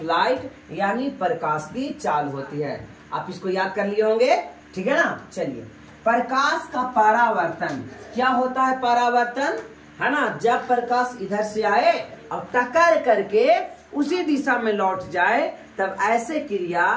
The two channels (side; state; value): both; identical; correlation 1.00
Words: लाइट, यानी प्रकाश की चाल होती है। आप इसको याद कर लिए होंगे, ठीक है ना। चलिए, प्रकाश का परावर्तन क्या होता है? परावर्तन, है ना, जब प्रकाश इधर से आए और टक्कर करके उसी दिशा में लौट जाए, तब ऐसे क्रिया